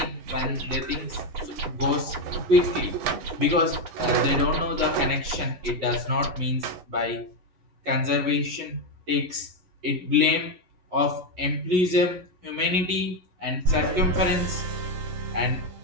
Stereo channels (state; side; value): late; left; 11 ms